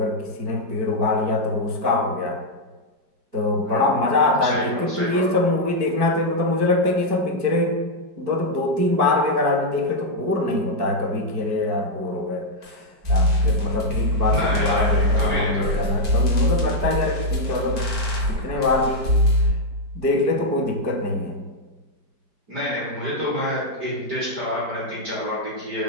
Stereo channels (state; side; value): late; left; 5.0 ms